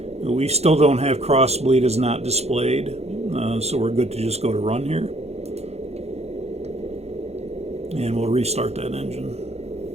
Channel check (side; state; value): left; late; 0.31 ms